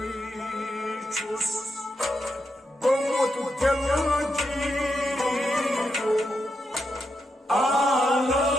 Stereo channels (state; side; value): normal; both; correlation 0.84